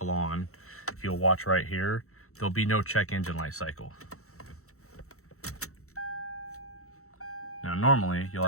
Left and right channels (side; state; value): right; late; 0.64 ms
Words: on. If you'll watch right here, there'll be no check engine light cycle. Now normally you'll